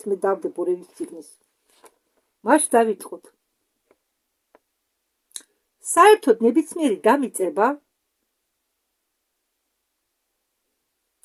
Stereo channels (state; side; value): identical; both; correlation 1.00